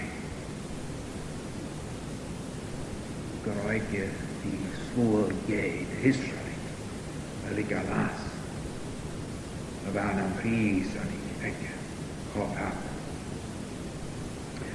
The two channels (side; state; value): both; identical; correlation 1.00